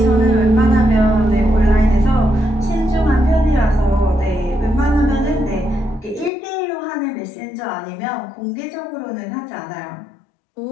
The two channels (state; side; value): drops out; right; at 6.3 s